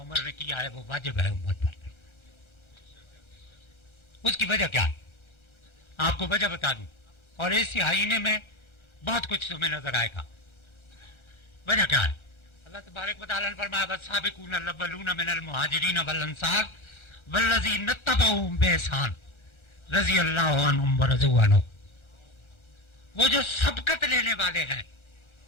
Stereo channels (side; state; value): right; late; 1.3 ms